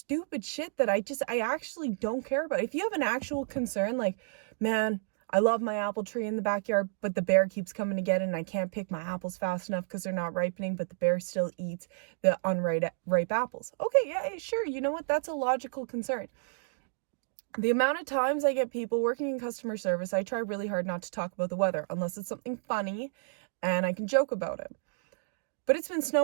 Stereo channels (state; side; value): silent; left; digital silence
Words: shit that I actually don't care about. If you have an actual concern, like, man, I love my apple tree in the backyard, but the bear keeps coming to get it and I can't pick my apples fast enough because they're not ripening, but the bear still eats the ripe apples. Okay, yeah, sure. You know what? That's a logical concern. The amount of times I get people working in customer service, I try really hard not to talk about the weather unless it's something funny and I can joke about it. But it's been